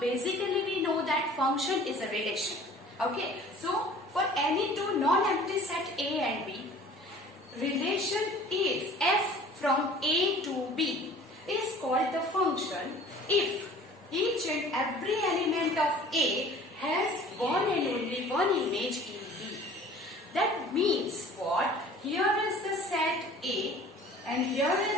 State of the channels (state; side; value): normal; both; correlation 0.47